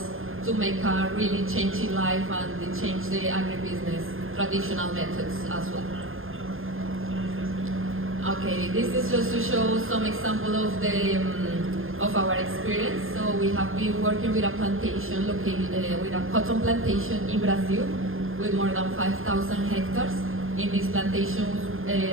to make a really change in life and change the agribusiness traditional methods as well. Okay, this is just to show some example of our experience. So we have been working with a plantation with a cotton plantation in Brazil with more than 5,000 hectares. In these plantations,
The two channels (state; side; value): late; left; 0.60 ms